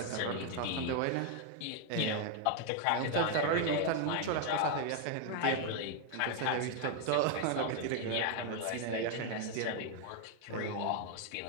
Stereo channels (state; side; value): different; both; correlation 0.00